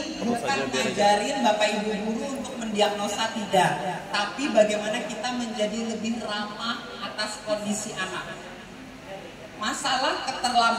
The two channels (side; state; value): both; identical; correlation 1.00